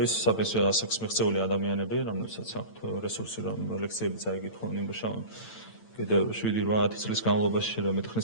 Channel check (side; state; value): right; late; 8.9 ms